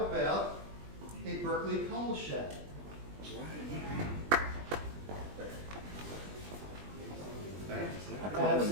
about a Berkeley coal shad?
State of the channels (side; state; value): left; late; 20 ms